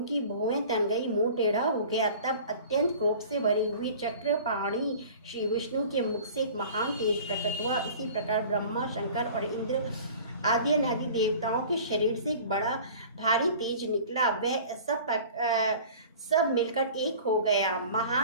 भुवें तन गई, मुंह टेढ़ा हो गया। तब अत्यंत क्रोध से भरी हुई चक्रपाणी श्री विष्णु के मुख से एक महान तेज प्रकट हुआ। इसी प्रकार ब्रह्मा शंकर और इंद्र आदि अनादि देवताओं के शरीर से एक बड़ा भारी तेज निकला। वह सब मिलकर एक हो गया।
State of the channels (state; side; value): inverted; both; correlation -0.43